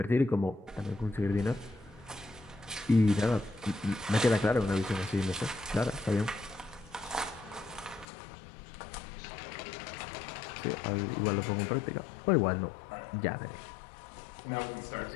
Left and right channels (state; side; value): drops out; right; at 8.1 s